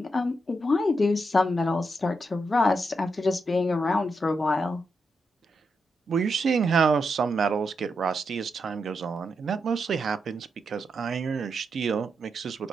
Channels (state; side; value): normal; both; correlation 0.84